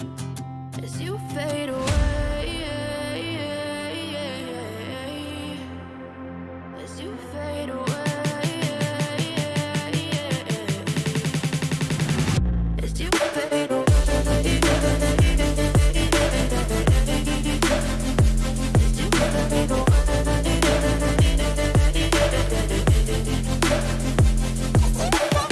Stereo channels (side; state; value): both; identical; correlation 1.00